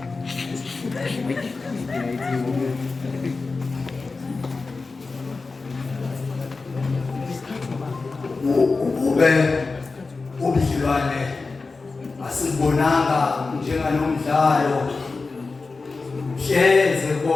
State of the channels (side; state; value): right; quieter; 4.0 dB